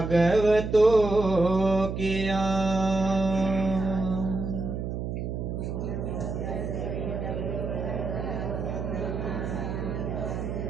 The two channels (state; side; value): noise; right; hum, 4 dB below the sound